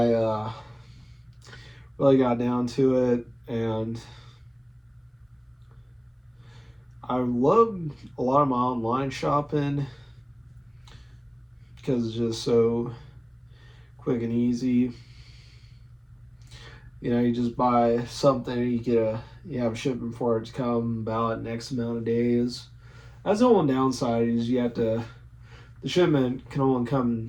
really got down to it, and I love a lot of my online shopping because it's just so quick and easy. You know, you just buy something, you have a shipment for it to come about X amount of days. That's the one downside is the shipment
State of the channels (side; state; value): both; identical; correlation 1.00